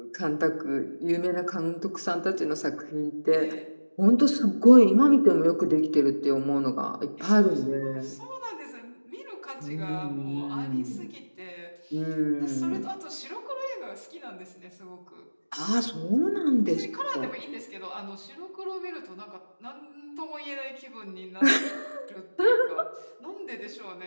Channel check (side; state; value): both; inverted; correlation -1.00